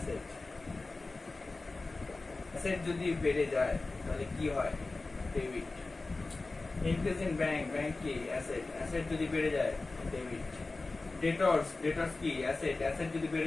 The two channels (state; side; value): quieter; right; 3.4 dB